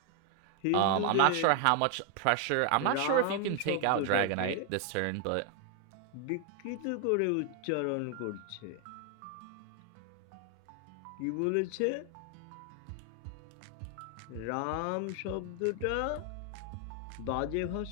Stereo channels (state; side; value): different; both; correlation 0.00